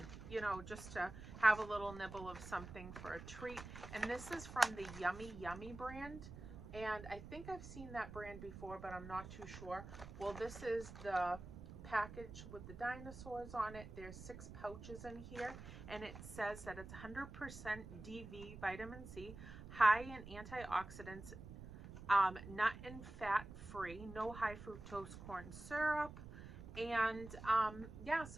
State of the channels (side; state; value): right; noise; rumble, 12 dB below the sound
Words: you know, just to have a little nibble of something for a treat. And this is from the Yummy Yummy brand. And I think I've seen that brand before, but I'm not too sure. Well, this is the package with the dinosaurs on it. There's 6 pouches in here, and it says that it's 100% DV vitamin C, high in antioxidants, nut and fat free, no high fructose corn syrup. And yeah,